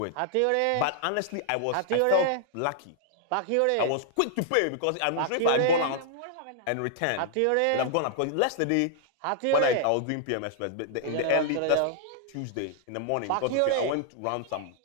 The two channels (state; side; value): different; both; correlation -0.01